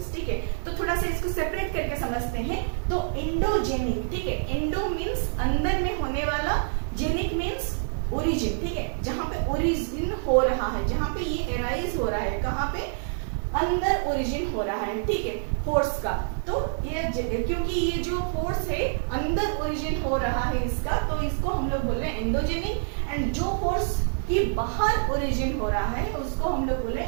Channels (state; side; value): silent; left; 60 dB below the other